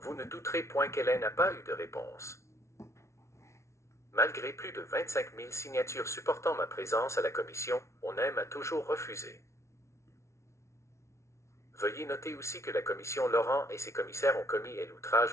ne douterez point qu'elle n'a pas eu de réponse. Malgré plus de 25 000 signatures supportant ma présence à la commission, on m'a toujours refusé. Veuillez noter aussi que la commission Laurent et ses commissaires ont commis l'outrage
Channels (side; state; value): right; late; 0.13 ms